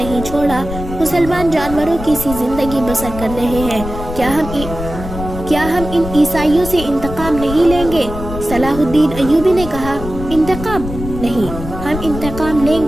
چھوڑا۔ مسلمان جانوروں کی سی زندگی بسر کر رہے ہیں۔ کیا ہم ان عیسائیوں سے انتقام نہیں لیں گے؟ صلاح الدین ایوبی نے کہا، انتقام نہیں، ہم انتقام لیں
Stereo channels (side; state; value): left; noise; rumble, 9 dB below the sound